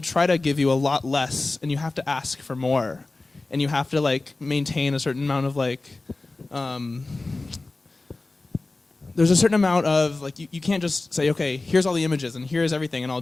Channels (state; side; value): quieter; right; 3.3 dB